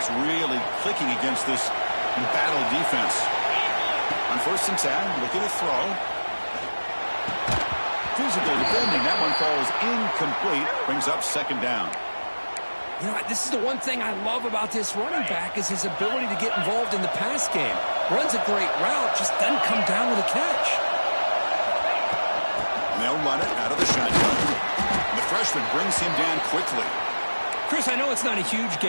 really clicking against this embattled defense. On 1st and 10, looking to throw. Physical defending. That one falls incomplete. Brings up 2nd down. You know, this is the one thing I love about this running back is his ability to get involved in the pass game. Runs a great route, just doesn't come down with a catch. And they'll run it out of the shotgun. And the freshman brings him down quickly. Chris, I know it's not a huge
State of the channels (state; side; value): inverted; both; correlation -1.00